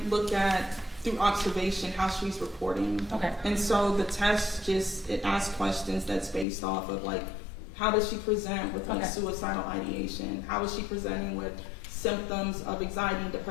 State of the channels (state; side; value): drops out; right; at 6.5 s